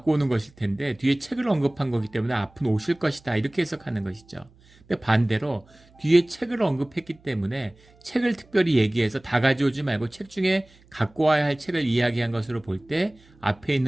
오는 것일 텐데 뒤에 책을 언급한 거기 때문에 앞은 옷일 것이다. 이렇게 해석하는 것이죠. 근데 반대로 뒤에 책을 언급했기 때문에 책을 특별히 얘기해서 다 가져오지 말고 책 중에 갖고 와야 할 책을 이야기한 것으로 볼 때 앞에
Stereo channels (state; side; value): noise; right; hum, 29 dB below the sound